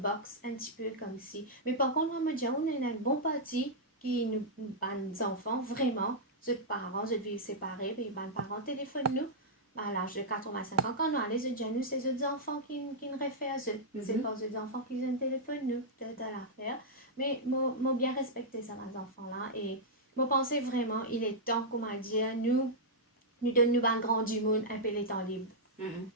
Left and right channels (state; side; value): normal; both; correlation -0.09